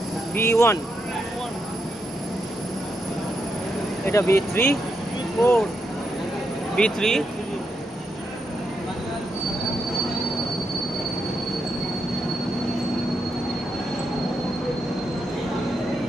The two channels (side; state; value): both; normal; correlation 0.82